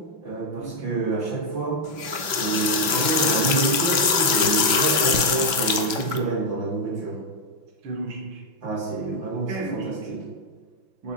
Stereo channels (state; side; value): late; left; 5.9 ms